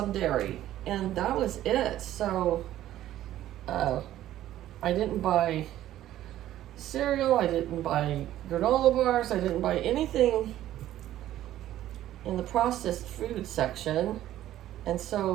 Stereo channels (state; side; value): quieter; left; 13.2 dB